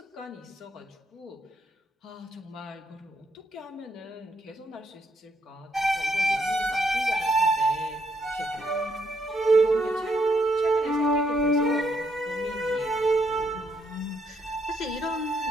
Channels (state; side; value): normal; both; correlation 0.74